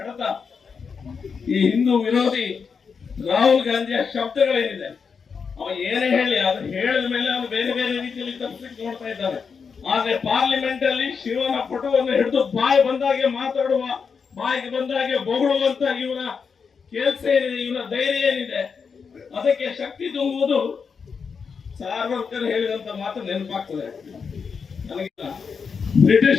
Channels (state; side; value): quieter; right; 5.8 dB